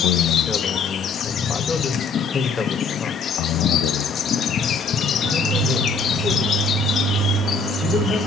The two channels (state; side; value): quieter; right; 4.1 dB